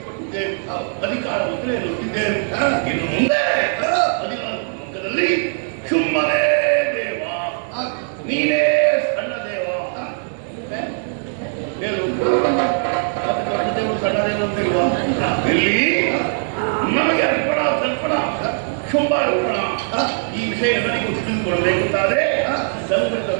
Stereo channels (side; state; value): left; silent; digital silence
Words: ಅಧಿಕಾರ ಮುದ್ರೆ ಎನ್ನುತ್ತಿದ್ದೇವೆ. ಇನ್ನು ಮುಂದೆ 14 ಲೋಕದಲ್ಲಿ ಶುಂಭನೇ ದೇವ, ನೀನೇ ಸಣ್ಣ ದೇವ. ಹೇಳು, ಮತ್ತೆ ದೊಡ್ಡ ದೇವರು ಸಣ್ಣ ದೇವರು ಅಂತಿಲ್ವಾ? ಇಲ್ಲಿ ನಮಗೆ ಅರ್ಪಣ ತರ್ಪಣ ಶುಂಭ ಅರ್ಪಣ ಈ ವಿಷಯ ನನಗೆ ತಿಳಿದುಕೊಳ್ಳಬೇಕಾದ್ರೆ ಸಂಗ್ರಹದ